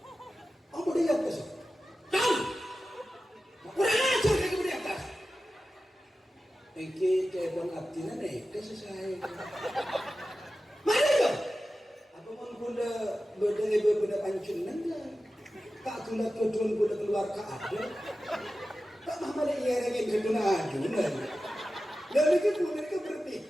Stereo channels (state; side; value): normal; both; correlation 0.94